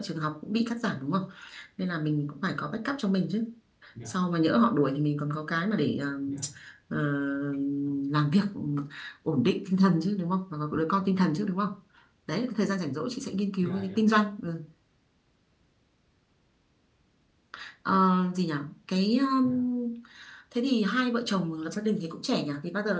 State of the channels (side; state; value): both; identical; correlation 1.00